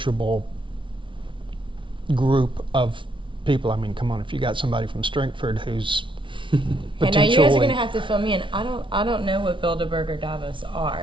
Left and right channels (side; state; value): left; late; 0.24 ms